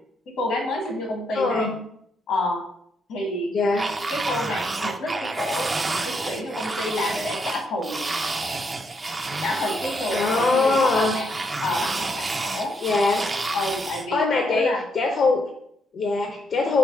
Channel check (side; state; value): both; normal; correlation 0.76